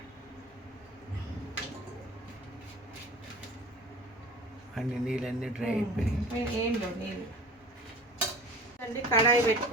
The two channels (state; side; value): normal; both; correlation 0.40